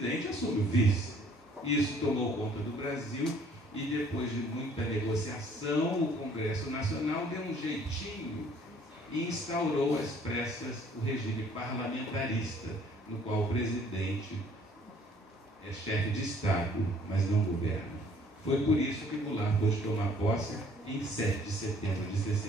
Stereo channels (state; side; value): normal; both; correlation 0.58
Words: assume o vice. Isso tomou conta do Brasil e, depois de muita negociação, o Congresso Nacional deu um jeitinho e instaurou às pressas o regime parlamentarista, no qual o presidente é chefe de Estado, mas não governa. Foi por isso que Goulart pôde tomar posse em 7 de setembro de